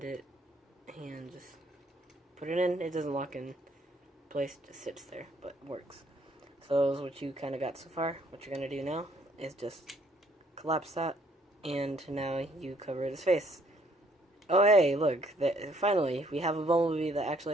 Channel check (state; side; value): normal; both; correlation 0.65